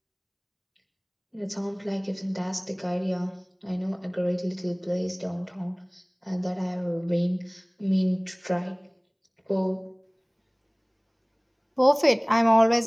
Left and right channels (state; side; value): identical; both; correlation 1.00